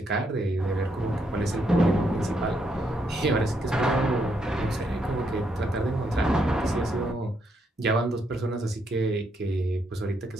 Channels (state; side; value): normal; both; correlation 0.76